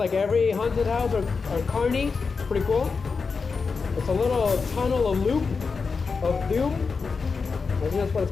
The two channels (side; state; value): right; quieter; 4.9 dB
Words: every haunted house or carny. It's pretty cool. It's a little tunnel, a loop of doom. I think that's what